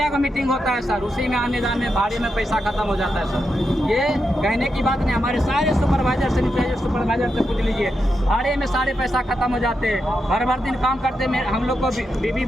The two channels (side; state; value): both; normal; correlation 0.86